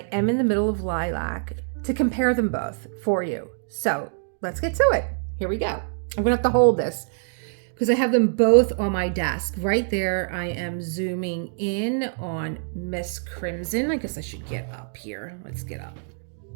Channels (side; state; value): left; silent; digital silence